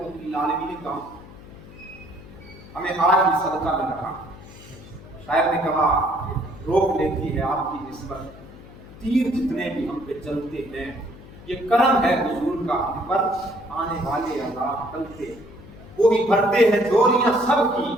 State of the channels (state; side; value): noise; left; hum, 18 dB below the sound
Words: للعالمین کا ہمیں آج بھی صدقہ مل رہا۔ شاعر نے کہا روک لیتی ہے آپ کی نسبت تیر جتنے بھی ہم پہ چلتے ہیں، یہ کرم ہے حضور کا ہم پر، آنے والے عذاب ٹلتے، وہی بھرتے ہیں جولیاں سب کی،